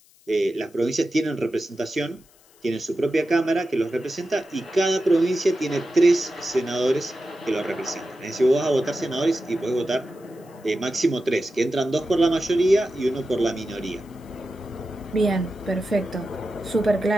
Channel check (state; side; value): noise; left; hiss, 29 dB below the sound